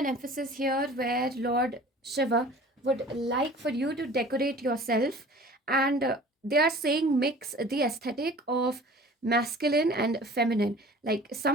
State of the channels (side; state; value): both; normal; correlation 0.45